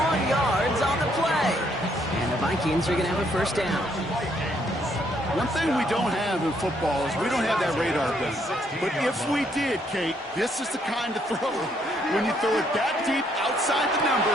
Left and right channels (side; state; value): both; normal; correlation 0.70